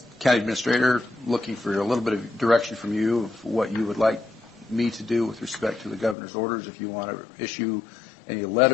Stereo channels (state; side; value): drops out; right; at 6.2 s